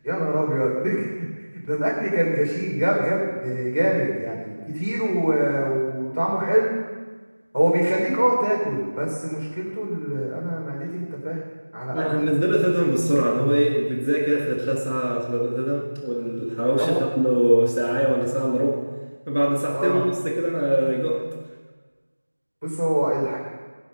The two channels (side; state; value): both; inverted; correlation -1.00